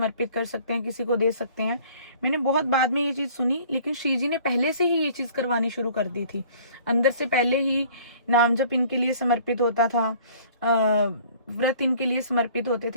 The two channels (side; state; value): both; inverted; correlation -0.52